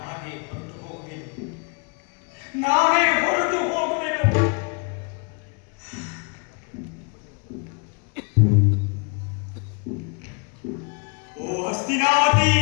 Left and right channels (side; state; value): right; quieter; 34.3 dB